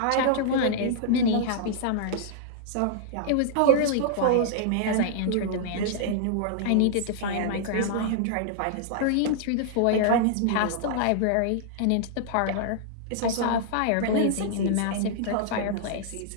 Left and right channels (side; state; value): both; different; correlation -0.01